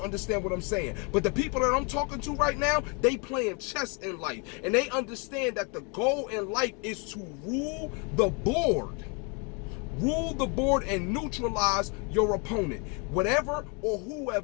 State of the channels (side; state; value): right; quieter; 33.4 dB